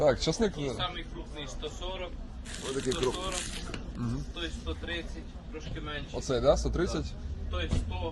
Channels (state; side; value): identical; both; correlation 1.00